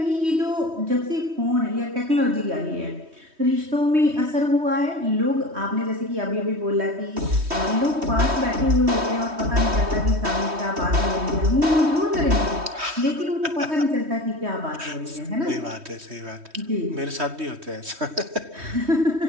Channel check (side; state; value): left; late; 3.2 ms